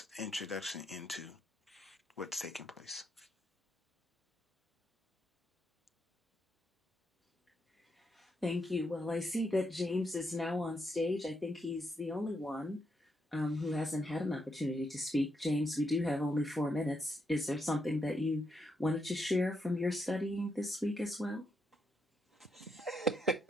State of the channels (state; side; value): normal; both; correlation 0.80